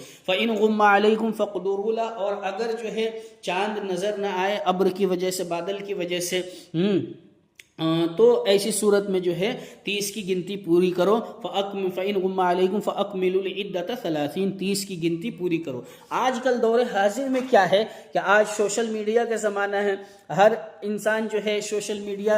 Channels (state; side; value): identical; both; correlation 1.00